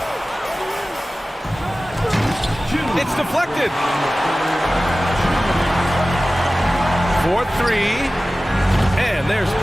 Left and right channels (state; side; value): normal; both; correlation 0.96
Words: It's deflected. 4-3. And there's